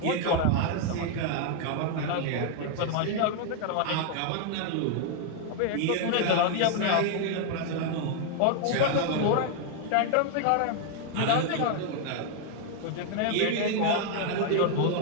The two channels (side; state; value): both; different; correlation 0.00